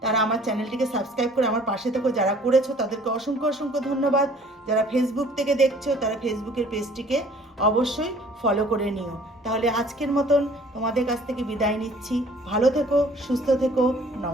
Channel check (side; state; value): both; normal; correlation 0.54